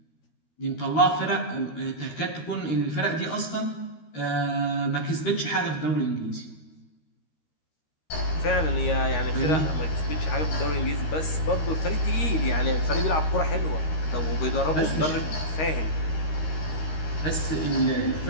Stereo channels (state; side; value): late; right; 13 ms